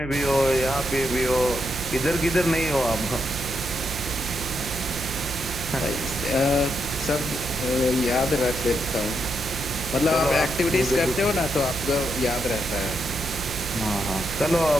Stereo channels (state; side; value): noise; right; hum, 10 dB below the sound